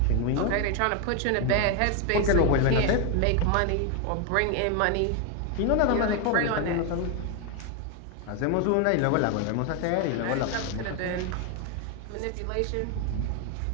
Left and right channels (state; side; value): different; both; correlation 0.01